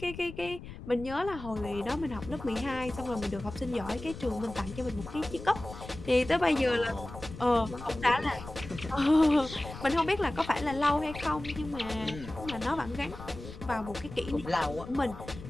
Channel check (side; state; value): left; noise; rumble, 13 dB below the sound